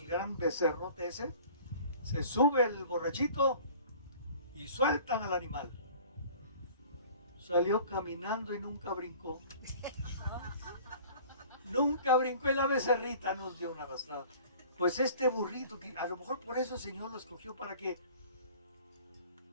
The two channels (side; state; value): both; inverted; correlation -0.47